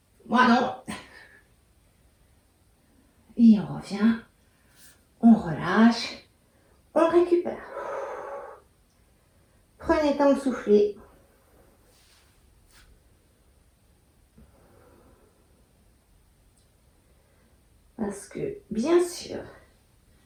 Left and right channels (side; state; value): both; identical; correlation 1.00